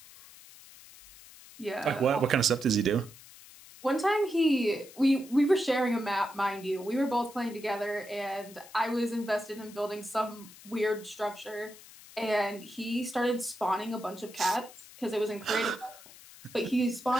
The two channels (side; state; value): left; noise; hiss, 20 dB below the sound